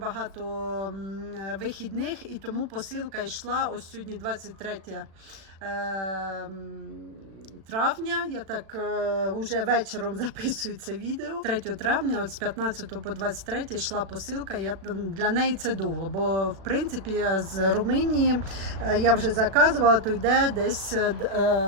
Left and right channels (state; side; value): late; left; 36 ms